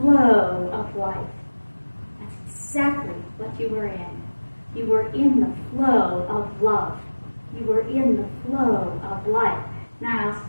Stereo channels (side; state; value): both; inverted; correlation -1.00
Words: of life. That's exactly what you were in. You were in the flow of love. You were in the flow of life. Now,